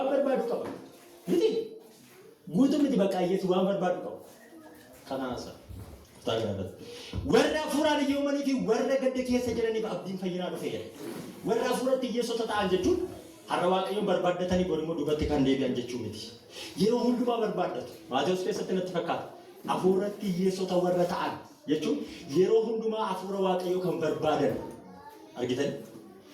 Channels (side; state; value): both; identical; correlation 1.00